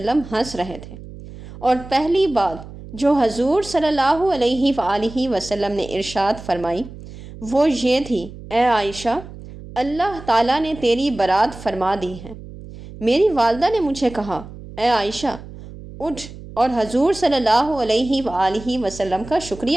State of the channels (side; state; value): right; noise; hum, 15 dB below the sound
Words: ہنس رہے تھے، اور پہلی بات جو حضور صلی اللہ علیہ وآلہ وسلم نے ارشاد فرمائی وہ یہ تھی، اے عائشہ، اللہ تعالیٰ نے تیری برات فرما دی ہے۔ میری والدہ نے مجھے کہا، اے عائشہ، اٹھ اور حضور صلی اللہ علیہ وآلہ وسلم کا